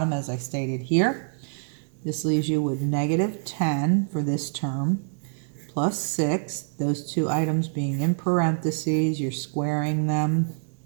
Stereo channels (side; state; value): left; silent; digital silence